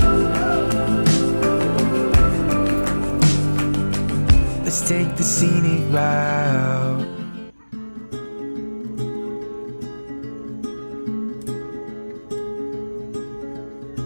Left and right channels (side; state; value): both; inverted; correlation -1.00